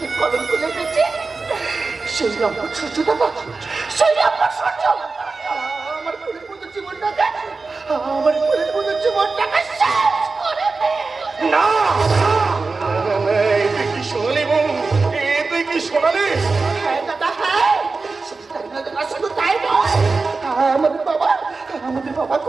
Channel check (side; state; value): left; quieter; 4.0 dB